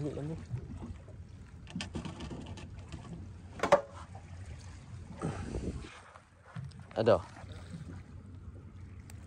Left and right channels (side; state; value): both; identical; correlation 1.00